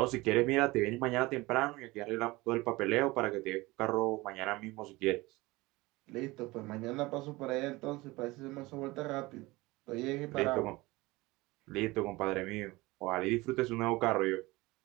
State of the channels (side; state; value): left; quieter; 21.3 dB